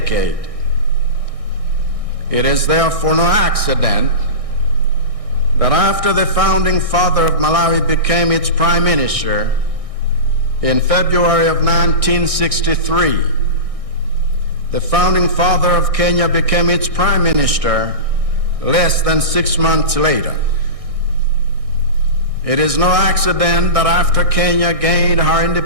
It is therefore no accident that after the founding father of Malawi became its prime minister in February of 1963, the founding father of Kenya became its prime minister less than 6 months later. It is no accident that after Kenya gained her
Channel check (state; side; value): late; left; 1.6 ms